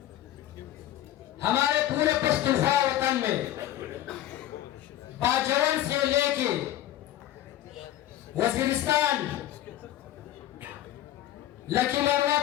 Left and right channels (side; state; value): right; quieter; 13.0 dB